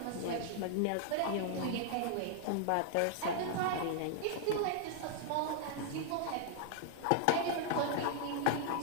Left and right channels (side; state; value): both; different; correlation 0.00